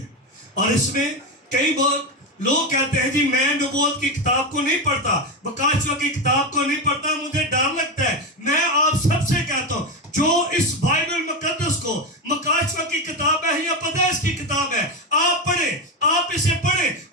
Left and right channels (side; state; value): both; normal; correlation 0.14